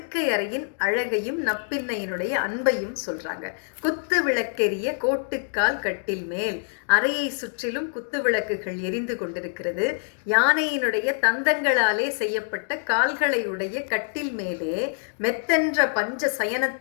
அறையின் அழகையும் நப்பின்னையினுடைய அன்பையும் சொல்றாங்க. குத்து விளக்கெரிய கோட்டுக்கால் கட்டில் மேல், அறையை சுற்றிலும் குத்து விளக்குகள் எரிந்து கொண்டிருக்கிறது. யானையினுடைய தந்தங்களாலே செய்யப்பட்ட கால்களை உடைய கட்டில் மேலே மெத்தென்ற பஞ்ச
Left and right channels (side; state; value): right; silent; digital silence